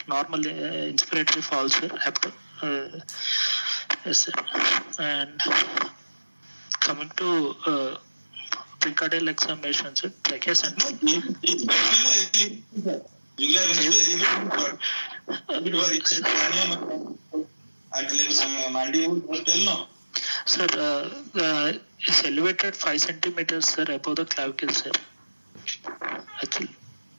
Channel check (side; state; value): both; inverted; correlation -1.00